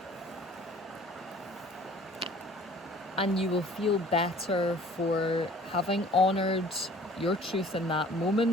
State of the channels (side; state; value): both; normal; correlation 0.51